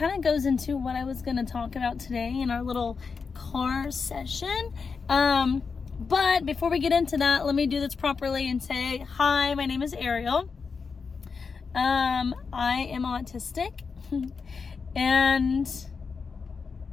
of goes into what I was going to talk about today in our little car session. But before we get into that, let me do this properly and say, hi, my name is Ariel. I am autistic, and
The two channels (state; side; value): quieter; right; 5.2 dB